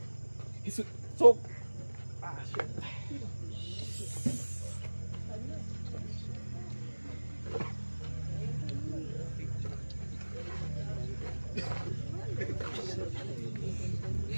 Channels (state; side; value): inverted; both; correlation -1.00